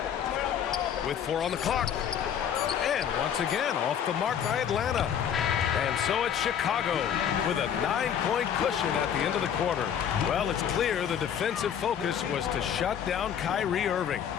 With 4 on the clock. And once again off the mark by Atlanta. And so it's Chicago with a 9-point cushion at the end of the quarter. Well, it's clear the defensive focus was to shut down Kyrie Irving,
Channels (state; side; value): quieter; right; 8.7 dB